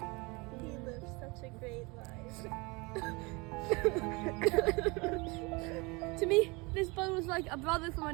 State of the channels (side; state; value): left; quieter; 26.5 dB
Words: He lived such a great life. To me, this bird was like a brother from